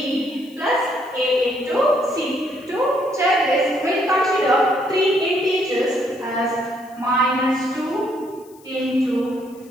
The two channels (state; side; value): noise; left; hiss, 27 dB below the sound